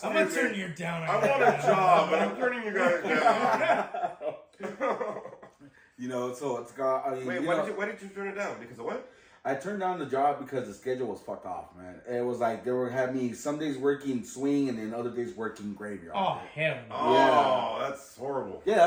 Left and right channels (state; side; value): identical; both; correlation 1.00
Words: I'm gonna turn you down. I want a job, but I'm turning you guys down. You know, so it's got. Wait, why did you turn it down? Because of what? I turned down the job because the schedule was fucked off, man. It was like they were having me some days working swing and then other days working graveyard. Oh hell no! Oh, that's horrible. Yeah,